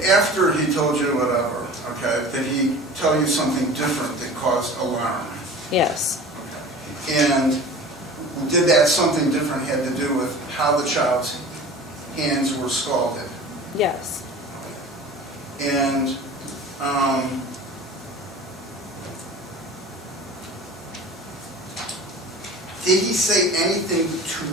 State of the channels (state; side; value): normal; both; correlation 0.39